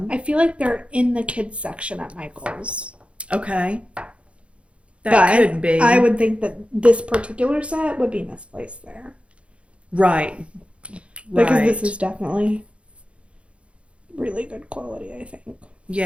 I feel like they're in the kids section at Michael's. Okay. That But could be. I would think that this particular set would be misplaced there. Right. Because Right. this is definitely really good quality, I think.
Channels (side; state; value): left; late; 0.060 ms